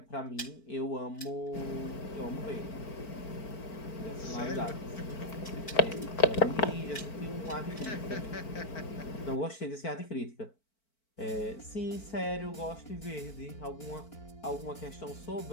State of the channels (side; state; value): right; late; 4.5 ms